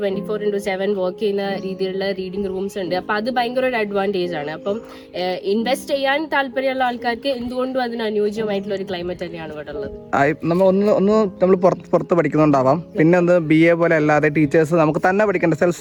വർക്ക് ചെയ്യുന്ന രീതിയിലുള്ള റീഡിംഗ് റൂംസ് ഉണ്ട്. അപ്പൊ അത് ഭയങ്കര ഒരു അഡ്വാൻറ്റേജ് ആണ്. അപ്പം ഇൻവെസ്റ്റ് ചെയ്യാൻ താല്പര്യമുള്ള ആൾക്കാർക്ക് എന്തുകൊണ്ടും അതിന് അനുയോജ്യമായിട്ടുള്ള ഒരു ക്ലൈമറ്റ് തന്നെയാണ് ഇവിടെ ഉള്ളത്. നമ്മൾ പുറത്ത് പഠിക്കുന്നുണ്ടാവാം. പിന്നെ ഒന്ന് BA പോലെ അല്ലാതെ ടീച്ചേഴ്സ് നമുക്ക് തന്നെ പഠിക്കേണ്ട സെൽഫ്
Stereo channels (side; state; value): both; identical; correlation 1.00